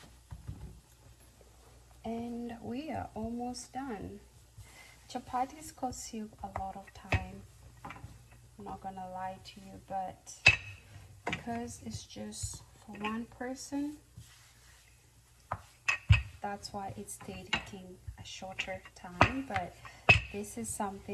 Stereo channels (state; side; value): identical; both; correlation 1.00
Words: And we are almost done. Chapatis cost you a lot of time. I'm not gonna lie to you, but because it's just for one person, that's why it's taking a shorter time. But this is